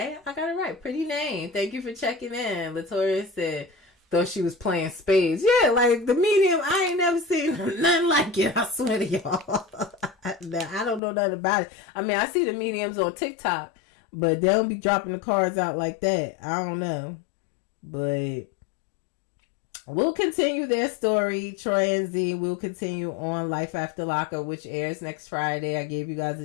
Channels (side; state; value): right; drops out; at 11.0 s